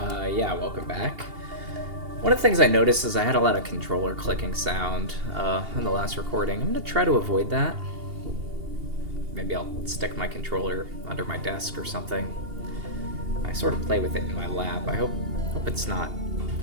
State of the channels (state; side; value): late; left; 2.8 ms